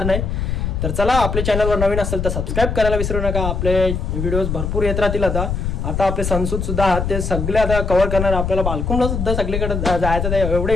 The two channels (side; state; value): left; noise; rumble, 2 dB below the sound